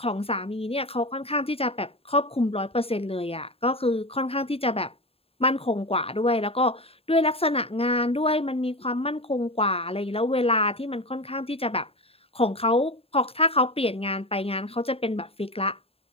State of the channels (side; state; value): right; late; 0.28 ms